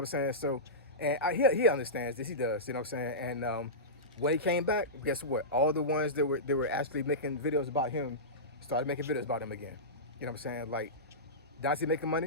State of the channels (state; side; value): normal; both; correlation -0.17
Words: I'm saying? So, and he understands this, he does, you know what I'm saying? And when he came back, guess what? All the ones that were actually making videos about him started making videos about him again. You know what I'm saying? Like, Dontay making